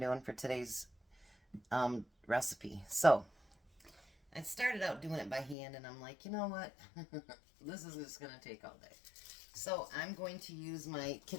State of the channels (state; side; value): drops out; right; at 5.6 s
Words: for today's recipe. So, I started out doing it by hand and I'm like, you know what? This is just going to take all day. So, I'm going to use my